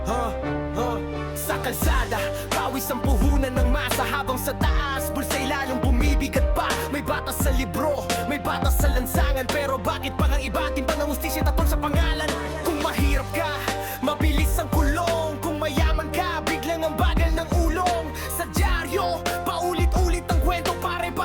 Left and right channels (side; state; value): both; identical; correlation 1.00